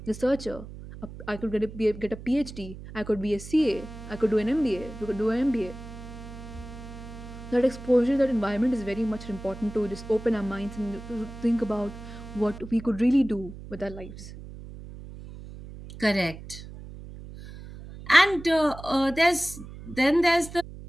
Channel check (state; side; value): noise; right; hum, 13 dB below the sound